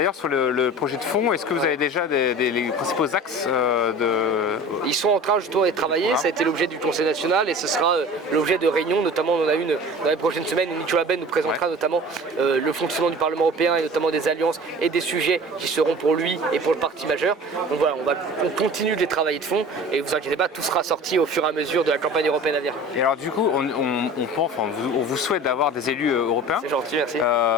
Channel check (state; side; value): normal; both; correlation 0.40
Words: sur le projet de fond, est-ce que vous avez déjà les principaux axes Ils sont en train justement d'être travaillés, ça a été l'objet du Conseil national et ce sera l'objet de réunions, notamment on en a une dans les prochaines semaines où Nicolas Ben nous présentera notamment le fonctionnement du Parlement européen et notamment des alliances et des sujets qui seront pour lui et pour le parti majeur. Donc voilà, on continue de les travailler de fond et vous inquiétez pas, tout sera sorti au fur et à mesure de la campagne européenne à venir. Et alors du coup, on vous souhaite d'avoir des élus européens. C'est gentil, merci.